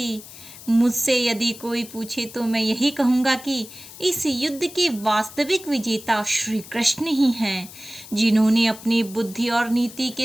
मुझसे यदि कोई पूछे तो मैं यही कहूँगा कि इस युद्ध के वास्तविक विजेता श्री कृष्ण ही हैं, जिन्होंने अपनी बुद्धि और नीति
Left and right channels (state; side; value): noise; left; hiss, 16 dB below the sound